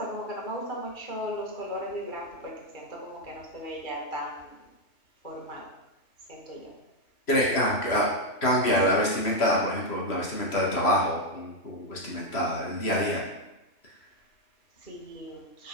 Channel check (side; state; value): right; late; 3.0 ms